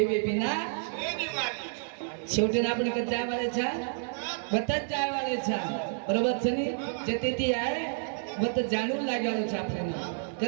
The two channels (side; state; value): left; silent; digital silence